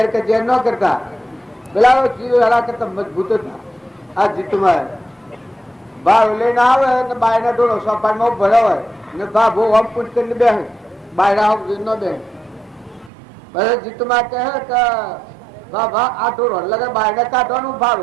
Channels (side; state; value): left; drops out; at 13.1 s